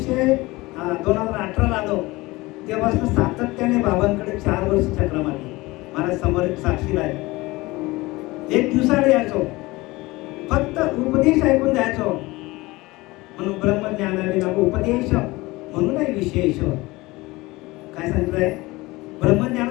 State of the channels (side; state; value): right; quieter; 21.2 dB